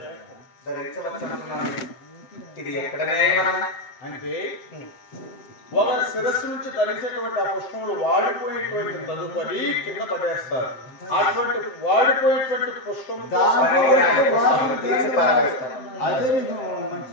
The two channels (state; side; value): late; right; 7.8 ms